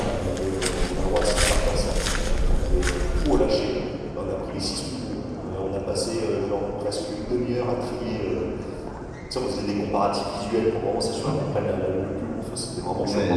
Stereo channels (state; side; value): identical; both; correlation 1.00